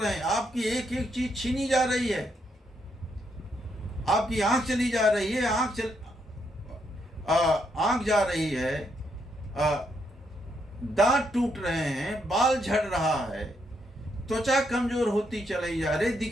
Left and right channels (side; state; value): both; normal; correlation 0.77